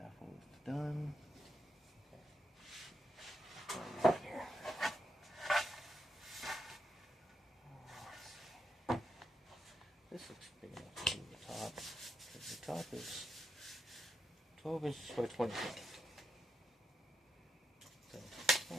is done. Okay. Here. This looks big enough to do the top, because the top is 12 inches by 25. So,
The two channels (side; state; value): both; normal; correlation 0.82